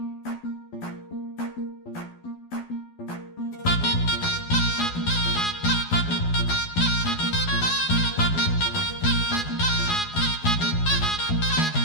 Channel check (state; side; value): late; right; 12 ms